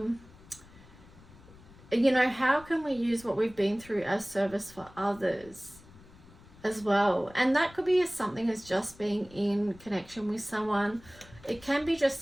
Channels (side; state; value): left; noise; rumble, 22 dB below the sound